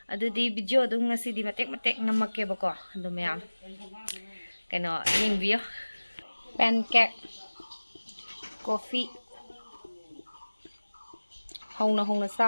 adudi video dum ngasidi matek namakke bako adu mayam keno yengbiyo pancake coffee hongna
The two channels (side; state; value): both; inverted; correlation -1.00